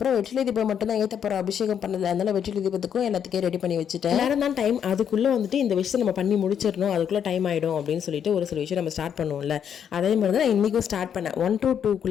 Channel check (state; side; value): quieter; right; 8.4 dB